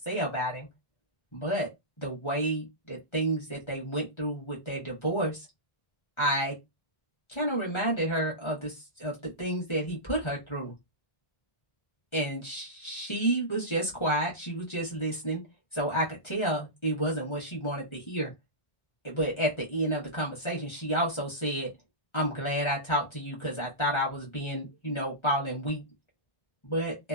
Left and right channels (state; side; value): late; right; 1.3 ms